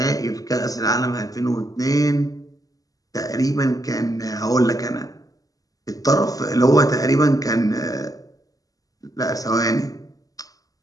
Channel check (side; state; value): right; late; 0.17 ms